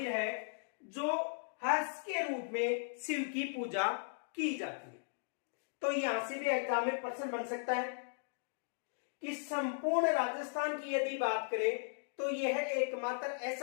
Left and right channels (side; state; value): right; silent; digital silence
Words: है जो हर्ष के रूप में शिव की पूजा की जाती है। तो यहां से भी एग्जाम में प्रश्न बन सकता है कि संपूर्ण राजस्थान की यदि बात करें तो यह एकमात्र